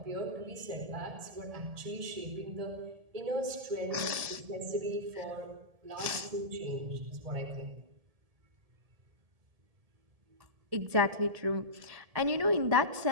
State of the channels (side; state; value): left; late; 1.7 ms